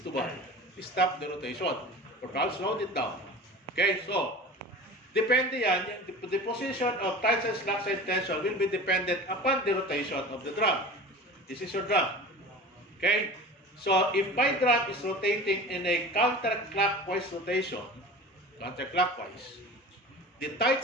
to what? Stop the rotation. Or perhaps slow it down. Okay, so, depende yan, the position of tight side, slack side tension will be dependent upon the rotation of the drum. This is your drum. Okay, so if my drum is rotating in a counterclockwise rotation, the tight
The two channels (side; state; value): both; normal; correlation 0.36